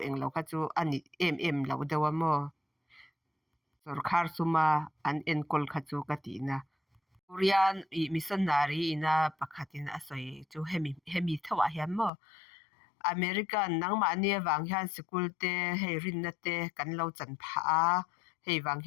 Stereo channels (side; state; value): right; drops out; at 12.1 s